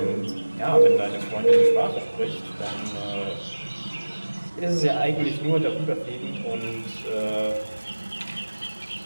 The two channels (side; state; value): both; inverted; correlation -1.00